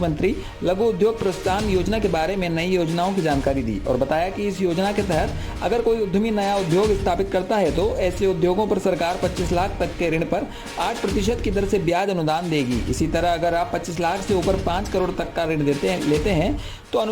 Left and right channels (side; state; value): both; identical; correlation 1.00